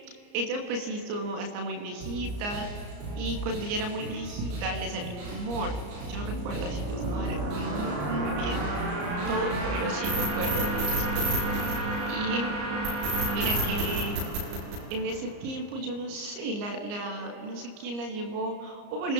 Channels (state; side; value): late; left; 34 ms